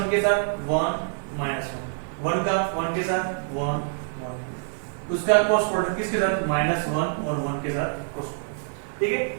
के साथ 1 -1 का 1 के साथ 1 1। उसका क्रॉस प्रोडक्ट किसके साथ -1 और 1 के साथ क्रॉस प्रोडक्ट। ठीक है,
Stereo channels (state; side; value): silent; left; 61 dB below the other